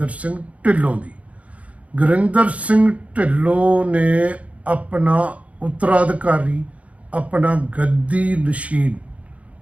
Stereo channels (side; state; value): left; late; 0.066 ms